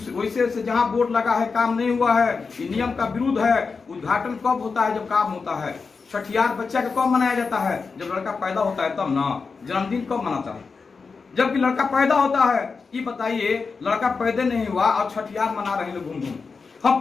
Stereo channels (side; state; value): right; quieter; 4.8 dB